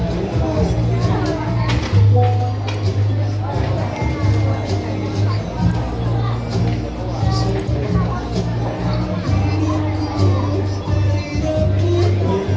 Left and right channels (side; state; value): both; identical; correlation 1.00